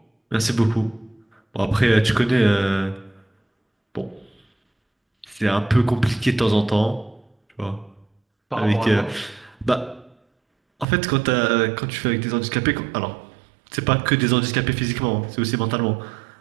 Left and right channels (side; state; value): left; drops out; at 10.9 s